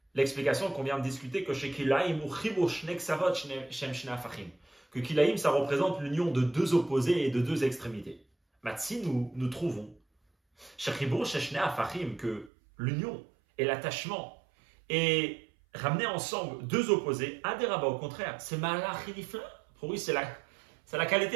l'explication qu'on vient de discuter que chez Kilaïm, que Kilaïm, ça représente l'union de deux opposés et de deux extrémités. Matsi, nous trouvons que l'union et l'attachement et ramener ensemble deux opposés, Aderaba, au contraire, c'est Malachilifla. Pour lui, c'est la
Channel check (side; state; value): left; drops out; at 12.5 s